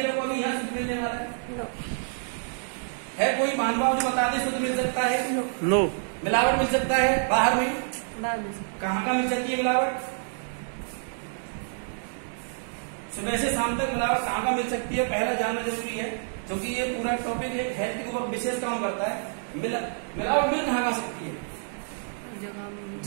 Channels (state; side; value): silent; left; digital silence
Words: को अभी यहाँ शुद्ध मिलने वाला है कोई मानव जो बता दे शुद्ध मिल सकता है? नो। मिलावट मिल सकता है बाहर में? कहाँ का मिल सकती है मिलावट? सुबह से शाम तक मिलावट कहाँ का मिल सकती है, पहला जानना जरूरी है, क्योंकि ये पूरा टॉपिक एक हेल्थ के ऊपर विशेष काम करता है। मिलावट मिल कहाँ का सकती है?